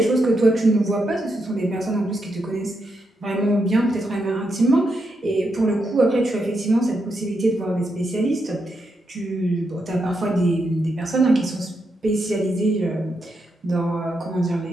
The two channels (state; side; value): normal; both; correlation 0.82